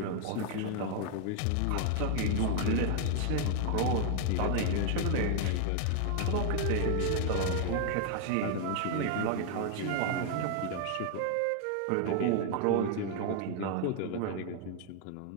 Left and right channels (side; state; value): both; different; correlation 0.00